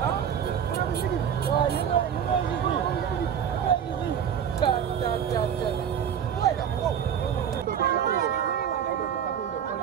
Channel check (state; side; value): quieter; left; 8.6 dB